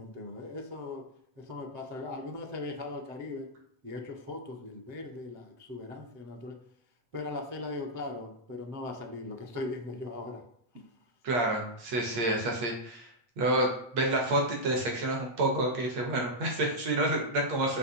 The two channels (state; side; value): late; left; 8.4 ms